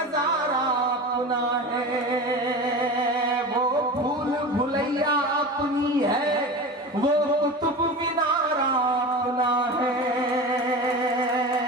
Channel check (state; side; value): normal; both; correlation 0.30